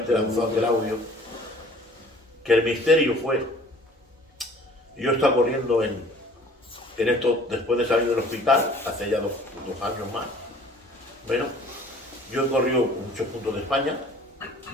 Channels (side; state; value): both; normal; correlation 0.51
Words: lanzó aquel audio, que el misterio fue: yo estaba corriendo en esto después de salir del hospital, hace ya dos años más. Bueno, yo he corrido en muchos puntos de España,